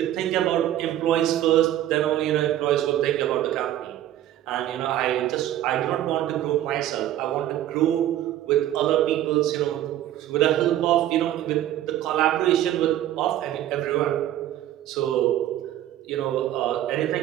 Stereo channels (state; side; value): quieter; left; 12.7 dB